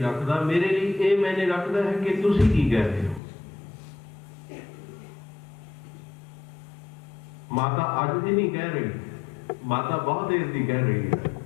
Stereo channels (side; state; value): right; drops out; at 3.2 s